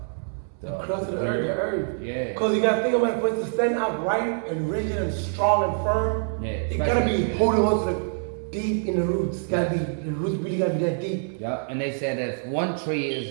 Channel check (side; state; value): left; silent; 61 dB below the other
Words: crust of the earth. Yeah. Because you gotta think about it, for it to stand upright and rigid and strong and firm. Yeah. It gotta be holding on to the deep in the roots. The roots really gotta be that deep. Yep. And they said that if one tree